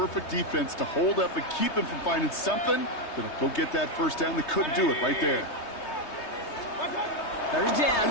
defense to hold up and keep him from finding something that'll go get that 1st down. They couldn't do it right there. 3rd down.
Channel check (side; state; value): right; late; 3.2 ms